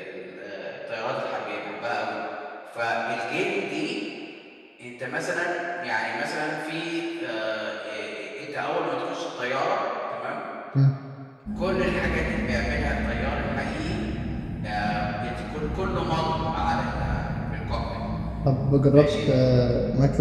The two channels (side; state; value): both; identical; correlation 1.00